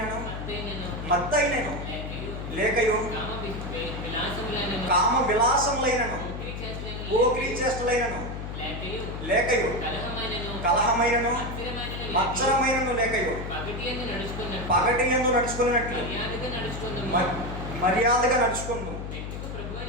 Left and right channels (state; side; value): noise; left; hum, 7 dB below the sound